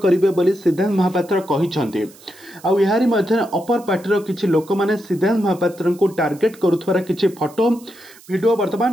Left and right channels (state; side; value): noise; right; hiss, 24 dB below the sound